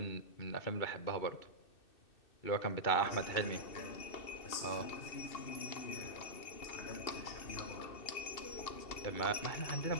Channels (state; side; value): late; right; 2.6 ms